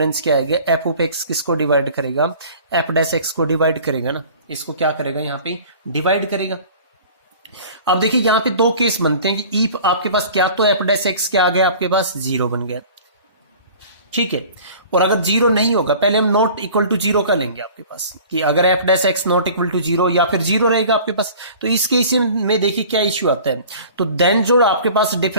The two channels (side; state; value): both; inverted; correlation -0.45